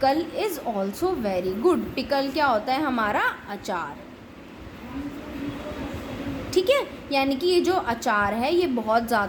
is also very good. Pickle क्या होता है, हमारा अचार, ठीक है। यानी कि ये जो अचार है ये बहुत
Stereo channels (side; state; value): both; identical; correlation 1.00